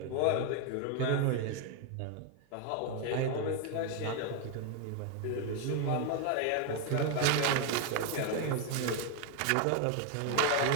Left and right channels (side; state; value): both; different; correlation 0.01